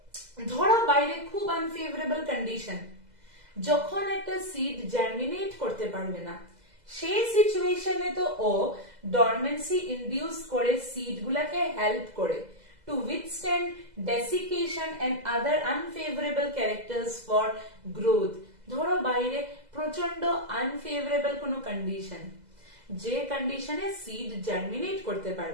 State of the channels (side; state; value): left; late; 2.0 ms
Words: ধরো বাইরে খুব আনফেভারেবল কন্ডিশন, যখন একটা সিড জার্মিনেট করতে পারবে না, সেই সিচুয়েশনে তো ও ডরমেন্সি ইনডিউস করে সিড গুলাকে হেল্প করে to withstand desiccation and other unfavorable characters for growth. ধরো বাইরে প্রচন্ড আনফেভারেবল কোনো কন্ডিশন, যে কন্ডিশনে সিড জার্মিনেট করতে